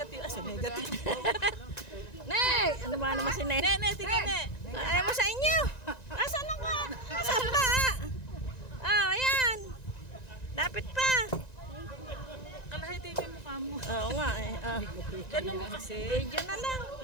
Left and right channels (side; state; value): right; late; 1.9 ms